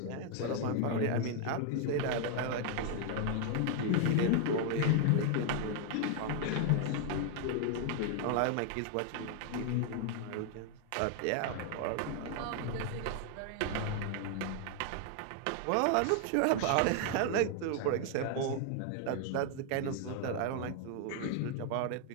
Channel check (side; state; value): both; different; correlation 0.00